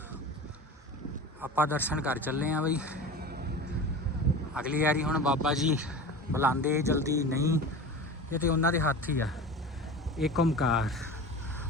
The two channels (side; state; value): both; normal; correlation 0.33